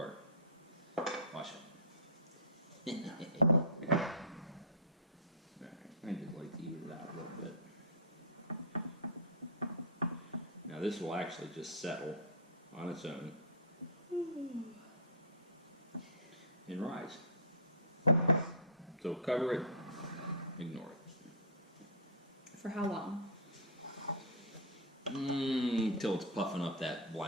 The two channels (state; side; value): normal; both; correlation -0.18